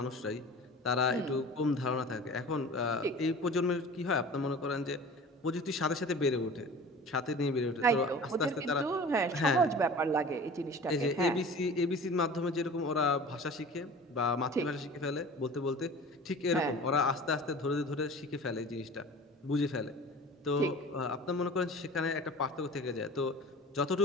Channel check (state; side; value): normal; both; correlation 0.40